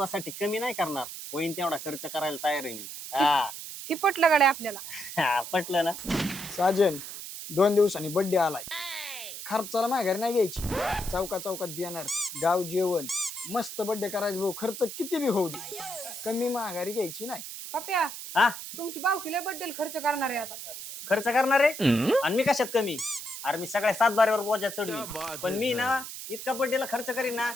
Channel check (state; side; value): noise; right; hiss, 9 dB below the sound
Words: कमी नाही करणार. होईन तेवढा खर्च करायला तयार आहे मी. ही पटलं गाड्या आपल्याला. पटलं ना. साजन 2 दिवसांनी बर्थडे आलाय. खर्चाला माघारी नाही घ्यायची. चौकात बियाणार, गाव जेवण, मस्त बर्थडे करायचं भाऊ. खर्च किती बी होऊ दे, कमी माघारी घ्यायची नाही. पप्या हा तुमची बावकीला बद्दल खर्च करणार आहे आता. खर्च करणार आहे आणि मी कशात कमी. अरे मी सगळ्या 7 बारीवर बोजा चढवी. पण मी ना इतका बर्थडेला खर्च करीन ना